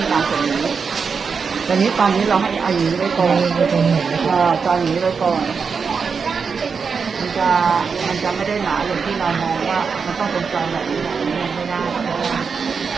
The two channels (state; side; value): quieter; left; 5.6 dB